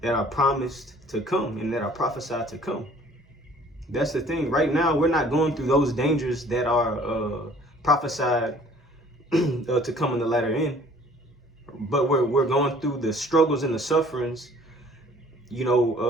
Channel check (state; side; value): normal; both; correlation 0.54